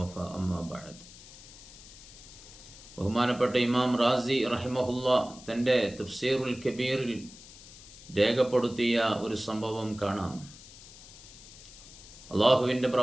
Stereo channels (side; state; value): left; noise; hiss, 18 dB below the sound